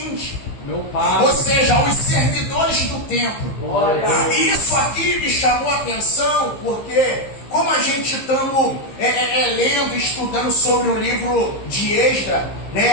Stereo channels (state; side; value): late; right; 15 ms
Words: Meu pai. ou seja, os servidores do templo. Glória. E isso aqui me chamou a atenção porque, como a gente estamos lendo, estudando sobre o livro de Esdras, né,